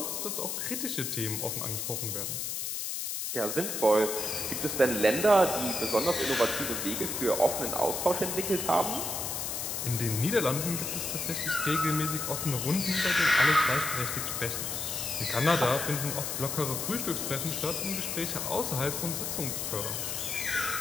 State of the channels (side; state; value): left; noise; hiss, 3 dB below the sound